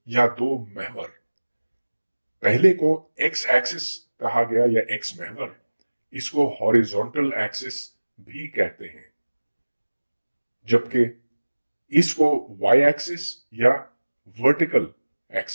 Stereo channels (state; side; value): inverted; both; correlation -1.00